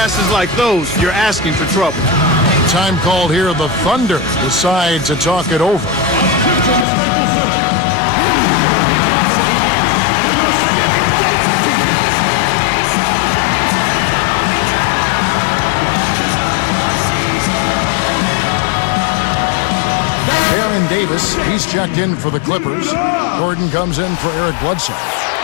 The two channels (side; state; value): right; drops out; at 6.9 s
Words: like those, you're asking for trouble. Time called here. The Thunder decide to talk it over. Baron Davis, he's checked in for the Clippers. Gordon comes in for Eric Bledsoe.